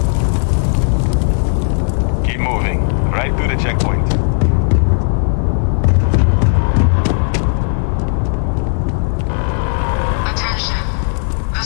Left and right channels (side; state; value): right; silent; 70 dB below the other